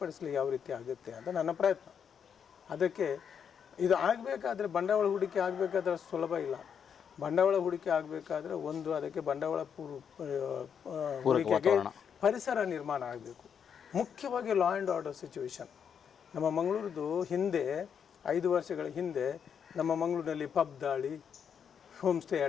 ಯಾವ ರೀತಿ ಆಗುತ್ತೆ ಅಂತ ನನ್ನ ಪ್ರಯತ್ನ. ಅದಕ್ಕೆ ಇದು ಆಗಬೇಕಾದ್ರೆ ಬಂಡವಾಳ ಹೂಡಿಕೆ ಆಗಬೇಕಾದ್ರೆ ಸುಲಭ ಇಲ್ಲ. ಬಂಡವಾಳ ಹೂಡಿಕೆ ಆಗಬೇಕಾದ್ರೆ ಅದಕ್ಕೆ ಬಂಡವಾಳ ಹೂಡಿಕೆಗೆ ಪರಿಸರ ನಿರ್ಮಾಣ ಆಗಬೇಕು. ಮುಖ್ಯವಾಗಿ ಲಾ ಆ್ಯಂಡ್ ಆರ್ಡರ್ ಸಿಚುವೇಶನ್. ನಮ್ಮ ಮಂಗಳೂರದು ಹಿಂದೆ 5 ವರ್ಷಗಳ ಹಿಂದೆ ನಮ್ಮ ಮಂಗಳೂರಿನಲ್ಲಿ ಪಬ್ ದಾಳಿ, ಹೋಮ್ ಸ್ಟೇ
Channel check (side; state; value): right; quieter; 7.5 dB